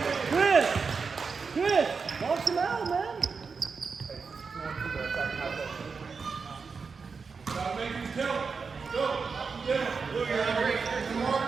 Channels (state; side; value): quieter; left; 5.1 dB